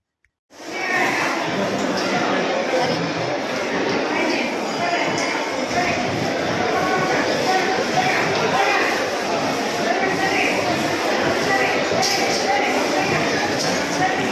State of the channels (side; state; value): both; identical; correlation 1.00